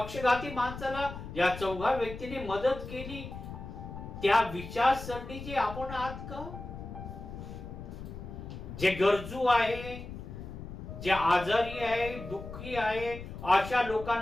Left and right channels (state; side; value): noise; left; rumble, 10 dB below the sound